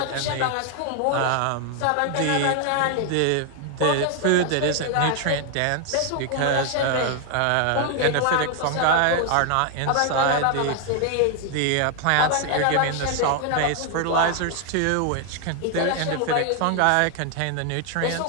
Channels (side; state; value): both; different; correlation 0.00